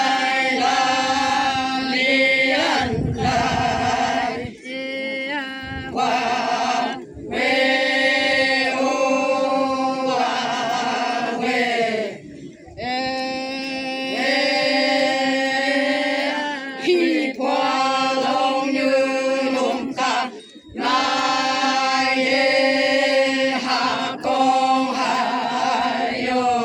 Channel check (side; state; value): both; identical; correlation 1.00